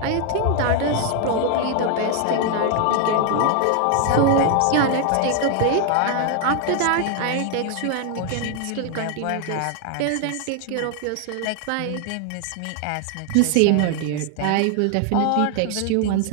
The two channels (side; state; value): both; different; correlation 0.00